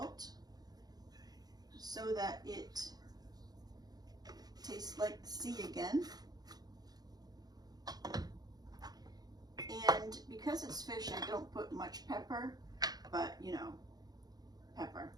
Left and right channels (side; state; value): left; late; 0.19 ms